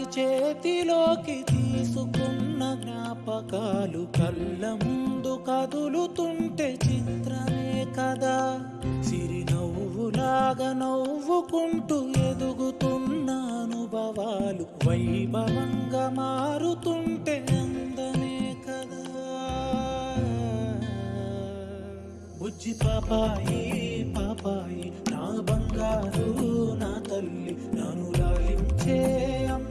చేతిలోకి తీసుకున్న జ్ఞాపకాలు కళ్ళ ముందు కదులుతుంటే చిత్రమే కదా. సిరినవ్వులాగా నవ్వుకుంటూ ఎదుగుతున్న అనుభవాలు వైభవంగా మారుతుంటే అందమే కదా. బుజ్జి పాపాయి పాపాయి నా బంగారు నా తల్లి, నన్ను లాలించే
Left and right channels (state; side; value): identical; both; correlation 1.00